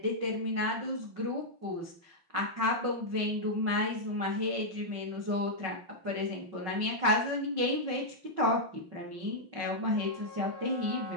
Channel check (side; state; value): left; late; 5.5 ms